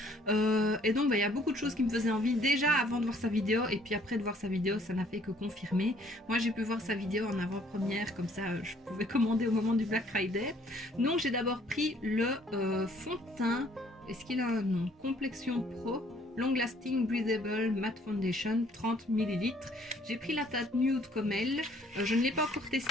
Et donc il y a beaucoup de choses qui me faisaient envie déjà avant de voir sa vidéo, et puis après de voir sa vidéo ça n'a fait que confirmer. Moi j'ai pu voir sa vidéo en avant-première, comme ça je pouvais commander au moment du Black Friday. Donc j'ai d'abord pris le fond de teint, est-ce qu'il a un nom? Complexion Pro Long Lasting Breathable Matte Foundation, 30 ml. J'ai pris la teinte nude comme elle. Je ne l'ai pas encore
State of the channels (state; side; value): normal; both; correlation 0.61